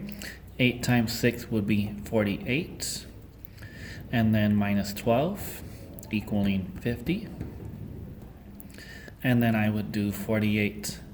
8 times 6 would be 48, and then minus 12 equaling 50. And then I would do 48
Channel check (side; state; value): both; identical; correlation 1.00